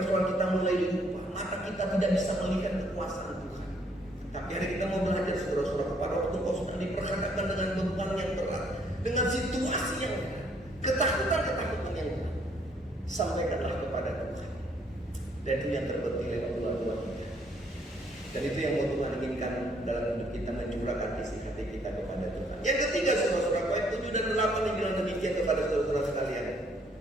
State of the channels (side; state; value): both; normal; correlation 0.67